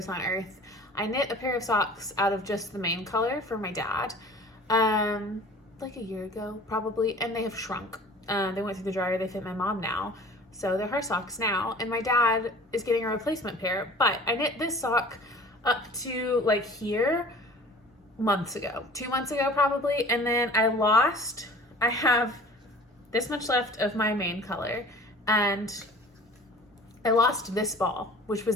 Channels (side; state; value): both; normal; correlation 0.45